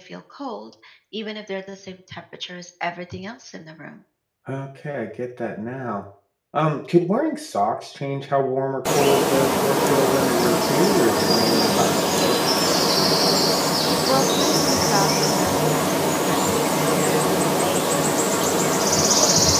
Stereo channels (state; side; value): identical; both; correlation 1.00